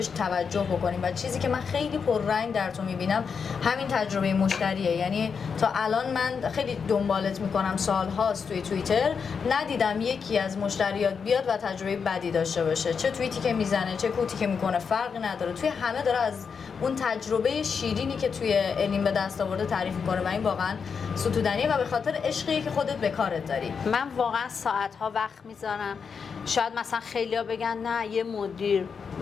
توجه بکنیم و چیزی که من خیلی پررنگ در تو میبینم همین تجربه مشتریه. یعنی تا الان من خیلی دنبالت میکنم، سالهاست توی توییتر ندیدم یکی از مشتریات بیاد و تجربه بدی داشته باشه. چه توییتی که میزنه چه کوتی که میکنه فرقی نداره، توی همه داره از اون تجربه شیرینی که توی الین به دست آورده تعریف میکنه و این واقعا ستودنیه و به خاطر عشقی که خودت به کارت داری. من واقعا ساعت‌ها وقت میذارم. شاید مثلا خیلیا بگن نه یه مدیر،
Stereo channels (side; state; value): right; quieter; 6.0 dB